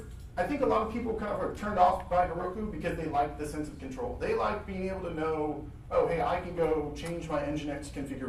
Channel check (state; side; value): identical; both; correlation 1.00